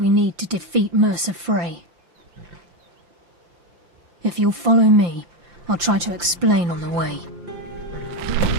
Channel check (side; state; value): left; late; 5.8 ms